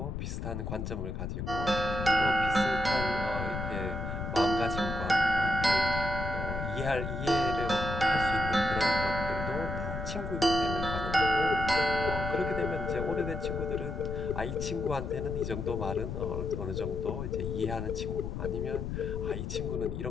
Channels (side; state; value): left; noise; rumble, 4 dB below the sound